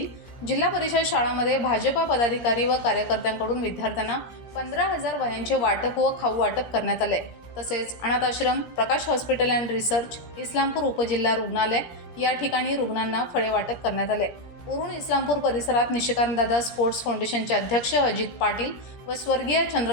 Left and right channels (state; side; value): late; right; 17 ms